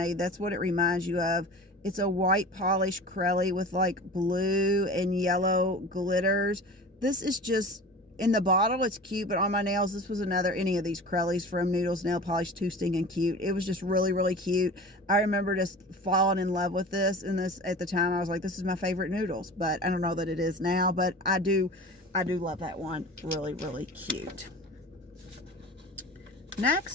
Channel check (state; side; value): normal; both; correlation 0.37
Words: That's what it reminds you of. It's a white polish Crelly with like blue and yellow glitters. This is just, in the bottle it's cute, but on my nails, this was any of these Crellys from Noodles Nail Polish, too stinking cute. It was just really, really cute. I remember just falling in love with this, and this at the time I was like, this is my favorite Noodles, but I don't know that it is now, but I do love that one. Really, really cute.